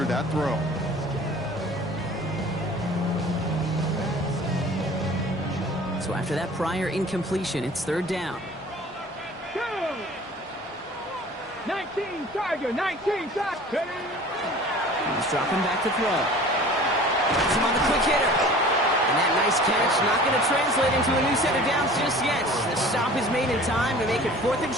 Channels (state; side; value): normal; both; correlation 0.44